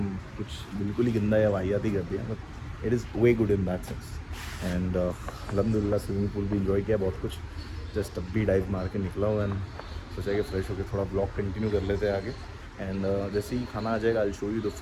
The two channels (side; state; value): both; identical; correlation 1.00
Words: कुछ बिल्कुल ही गंदा या वाहियात ही कर दिया, but it is way good in that sense. And अल्हम्दुलिल्लाह स्विमिंग पूल भी इन्जॉय किया बहुत कुछ. जस्ट अब भी डाइव मार के निकला हूँ एंड सोचा कि फ्रेश होकर थोड़ा ब्लॉग कंटिन्यू कर लेते हैं आगे. एंड जैसे ही खाना आ जाएगा I show you the